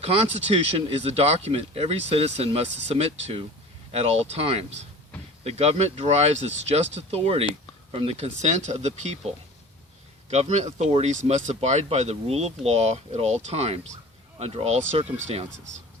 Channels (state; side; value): normal; both; correlation 0.40